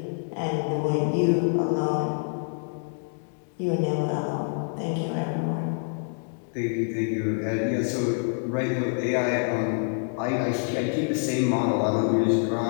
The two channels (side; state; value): right; silent; 61 dB below the other